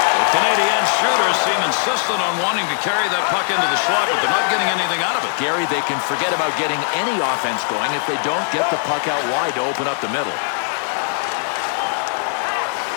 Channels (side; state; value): right; silent; digital silence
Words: The Canadiens shooters seem insistent on wanting to carry that puck into the slot, but they're not getting anything out of it. Gary, they can forget about getting any offense going if they don't get the puck out wide to open up the middle.